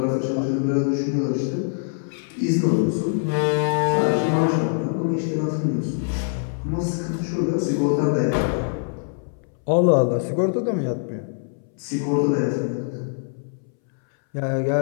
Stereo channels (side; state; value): right; silent; 63 dB below the other